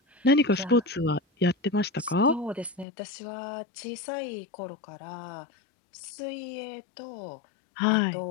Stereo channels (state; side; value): drops out; right; at 2.9 s